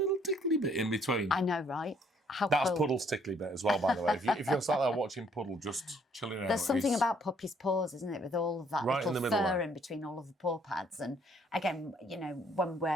tickly bit in between. I know, right? How That's cool. Puddle's tickly bit as well, by the way. If you're sat there watching Puddle just chilling out. There's something it's- about Puppy's paws, isn't it, with all of that Right in little the middle fur there. in between all of the paw pads. And again, you know, when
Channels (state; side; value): normal; both; correlation 0.64